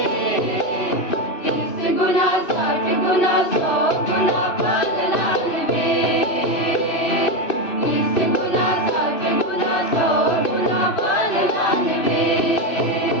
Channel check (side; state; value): right; late; 2.5 ms